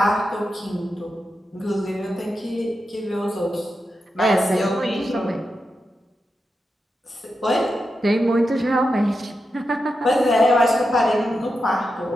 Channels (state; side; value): normal; both; correlation 0.88